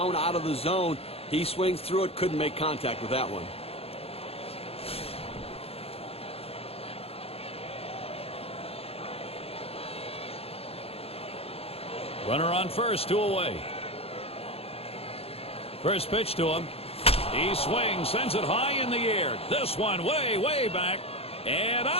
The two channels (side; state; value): right; late; 0.29 ms